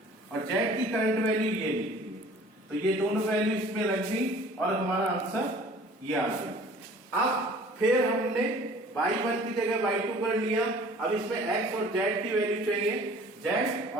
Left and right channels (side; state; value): both; normal; correlation 0.49